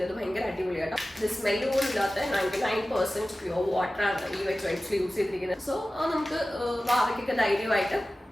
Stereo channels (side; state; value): both; normal; correlation 0.96